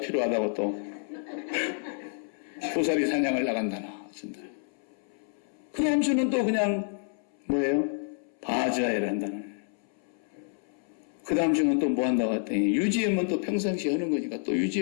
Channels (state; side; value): silent; right; 59 dB below the other